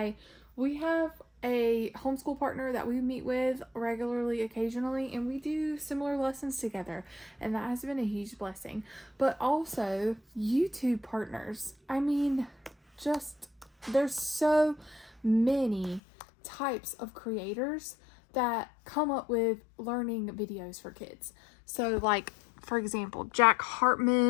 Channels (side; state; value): right; drops out; at 16.0 s